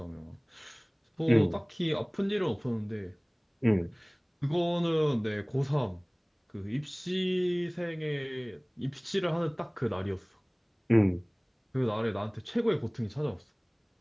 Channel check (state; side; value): identical; both; correlation 1.00